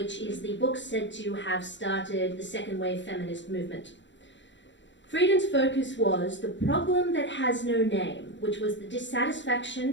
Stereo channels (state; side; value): late; right; 0.53 ms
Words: is the book said to have started the second wave feminist movement. Friedan's focus was the problem that has no name, which was the